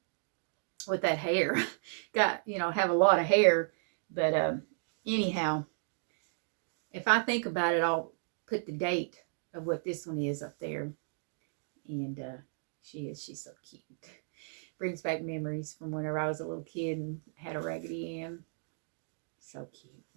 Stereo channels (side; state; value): left; silent; digital silence